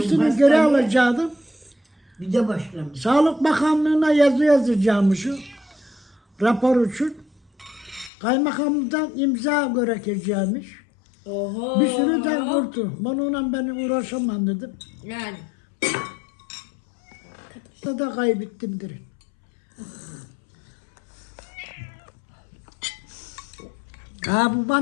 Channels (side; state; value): right; drops out; at 8.1 s